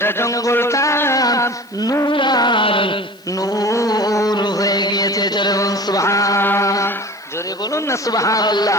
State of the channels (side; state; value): left; noise; hiss, 29 dB below the sound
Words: জঙ্গলটা নূর আর নূর হয়ে গিয়েছে। জোরে বলুন সুবহান, জোরে বলুন না